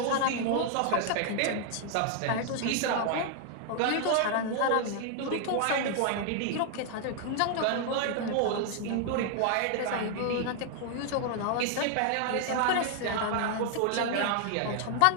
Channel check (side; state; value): both; different; correlation 0.00